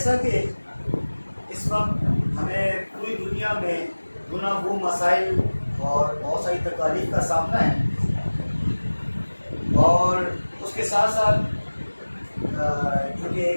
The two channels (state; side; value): inverted; both; correlation -1.00